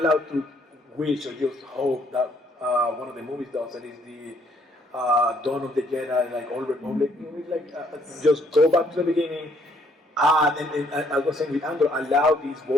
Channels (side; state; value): both; normal; correlation 0.67